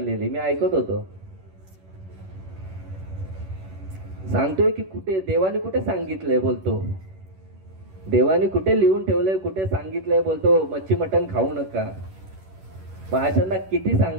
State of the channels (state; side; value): late; left; 11 ms